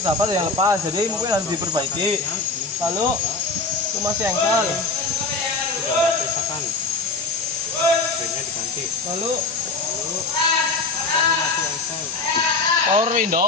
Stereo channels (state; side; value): quieter; right; 3.6 dB